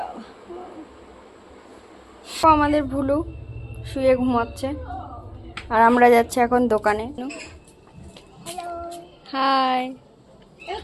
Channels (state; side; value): identical; both; correlation 1.00